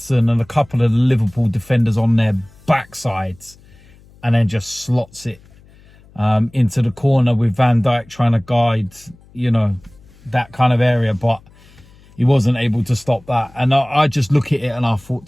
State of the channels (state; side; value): noise; left; hum, 26 dB below the sound